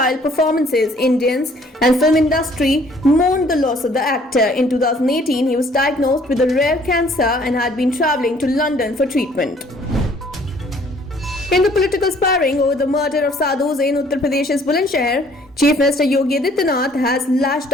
performances. Indians and film industry mourned the loss of the actor. In 2018, he was diagnosed with a rare cancer and had been travelling to London for treatment. In the political sparring over the murder of sadhus in Uttar Pradesh's Bulandshahr, Chief Minister Yogi Adityanath has lashed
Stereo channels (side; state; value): both; normal; correlation 0.59